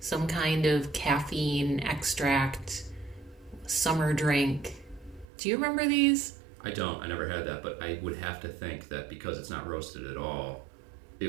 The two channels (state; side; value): drops out; left; at 5.2 s